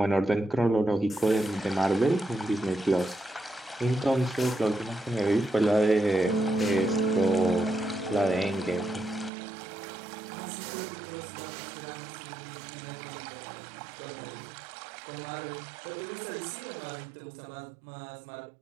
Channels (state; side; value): drops out; left; at 9.3 s